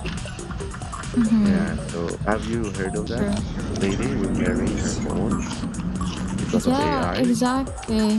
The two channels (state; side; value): identical; both; correlation 1.00